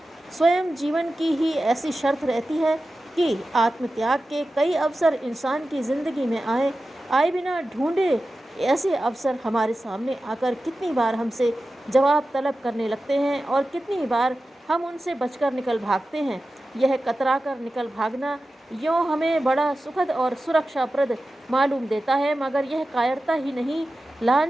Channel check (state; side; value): normal; both; correlation 0.94